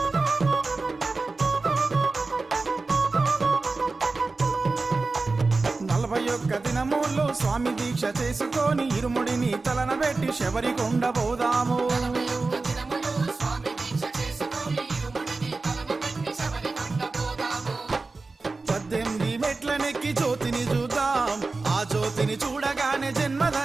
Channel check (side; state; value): left; quieter; 3.7 dB